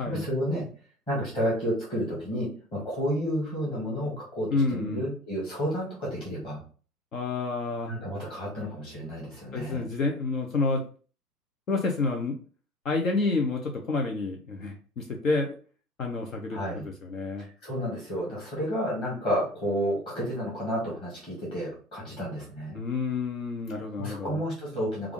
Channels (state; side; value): normal; both; correlation 0.41